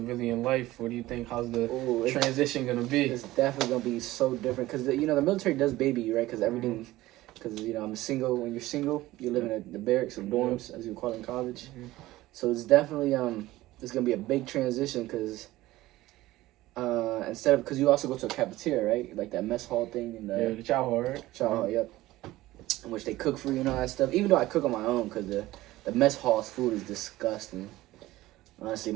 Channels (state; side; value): quieter; left; 17.0 dB